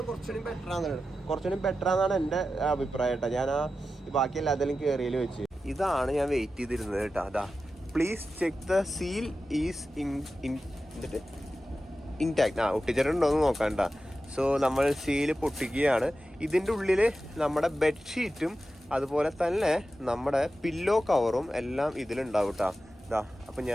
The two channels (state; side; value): normal; both; correlation 0.92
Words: കുറച്ചുകൂടി ബെറ്റർ ആണെന്നാണ് എൻ്റെ അഭിപ്രായം കേട്ടോ. ഞാൻ ബാക്കി എല്ലാത്തിലും കയറിയിൽ വെച്ച് ഇതാണ് ഞാൻ വെയിറ്റ് ചെയ്തിരുന്നത് കേട്ടോ. അതാ please check the seal is intact. ഒട്ടിച്ചിട്ടുണ്ടോയെന്ന് നോക്കാം കേട്ടോ. സോ നമ്മൾ സീല് പൊട്ടിക്കുകയാണ്. ഇതിൻ്റെ ഉള്ളിൽ നമ്മുടെ ബെഡ്ഷീറ്റും അതുപോലെ തന്നെ നമ്മുടെ പില്ലോ കവറും എല്ലാം ഇതിലുണ്ടാവും കേട്ടോ. ഇതാ അപ്പം